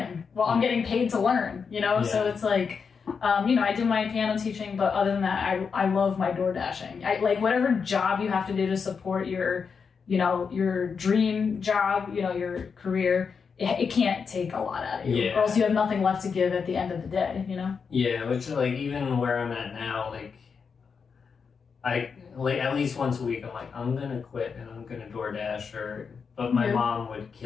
while I'm getting paid to learn, So it's like, I do my piano teaching, but other than that, I love my door dashing. I like whatever job you have to do to support your dream job, your career. It can't take a lot out of you, or else you have nothing left to give at the end of the day. Yeah, which like even where I'm at now, like I like at least once a week, I'm like, I'm gonna quit and I'm gonna DoorDash but my mom would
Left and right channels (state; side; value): quieter; right; 5.8 dB